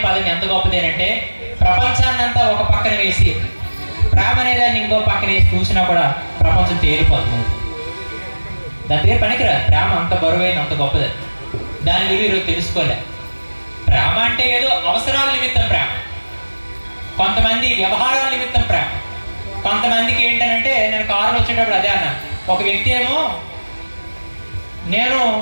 పదం ఎంత గొప్పదేనంటే ప్రపంచాన్నంతా ఒక పక్కన వేసి ప్రేమ అనేదాన్ని ఇంకో పక్కన వేసి చూసినా కూడా ప్రపంచం తేలిపోతుంది. దాని పేరు పనికిరాదు. ప్రేమ అంత బరువైన అంత గొప్పది. దాని విలువ ఈరోజు తెలుసుకోలే. ప్రేమ అంటే ఏదో అవసరాల నిమిత్తం ప్రేమ, కొంతమంది వ్యవహారాల నిమిత్తం ప్రేమ, కొంతమందికి ఏంటంటే నేను కారులో వచ్చేటప్పుడు అదే అన్నా. ఒక వ్యక్తి ఏమో నేను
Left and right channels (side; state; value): both; inverted; correlation -1.00